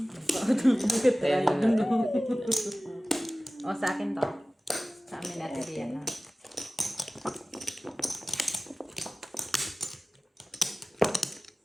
O, sa akin to. Sa amin natin yan. Ha?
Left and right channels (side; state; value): both; normal; correlation 0.97